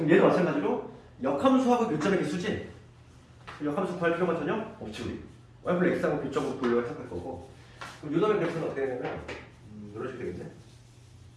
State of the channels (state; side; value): identical; both; correlation 1.00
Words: 얘도 마찬가지로 역함수하고 교점의 개수지. 역함수 구할 필요가 전혀 없지 우리. y 플 x하고 교점으로 돌려 해석할 거고. 그럼 요놈의 그래프는 어떻게 되냐면 이런 식으로 되겠네.